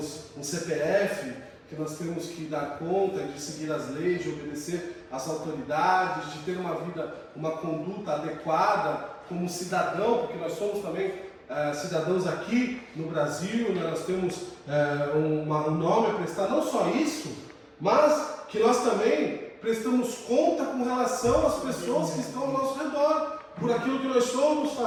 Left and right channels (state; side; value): identical; both; correlation 1.00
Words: um CPF, que nós temos que dar conta de seguir as leis, de obedecer às autoridades, de ter uma vida, uma conduta adequada como cidadão, porque nós somos também cidadãos aqui no Brasil, né? Nós temos um nome a prestar, não só isso, mas que nós também prestamos conta com relação às pessoas que estão ao nosso redor, por aquilo que nós somos,